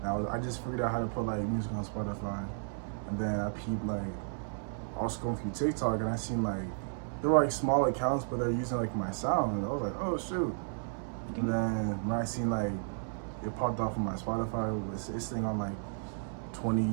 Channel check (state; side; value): silent; left; 56 dB below the other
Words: And I just figured out how to put like music on Spotify, and then I peeped like I was going through TikTok and I seen like they were like small accounts, but they're using like my sound, and I was like, oh shoot. And then when I seen like it popped off on my Spotify, it's thing on like